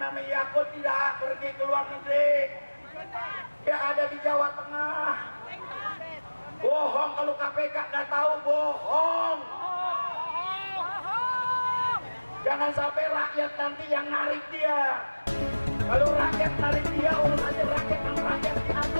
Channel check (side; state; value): both; inverted; correlation -1.00